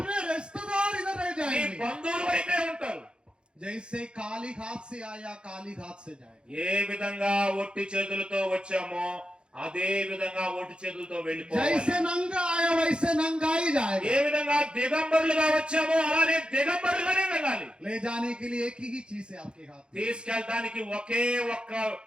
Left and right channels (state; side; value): late; left; 0.053 ms